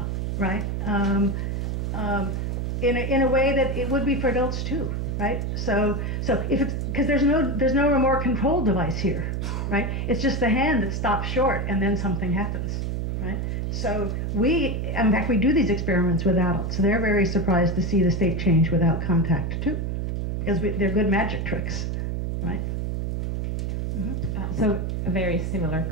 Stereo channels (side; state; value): right; noise; hum, 1 dB below the sound